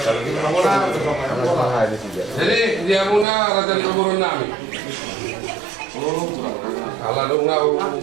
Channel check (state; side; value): drops out; left; at 3.2 s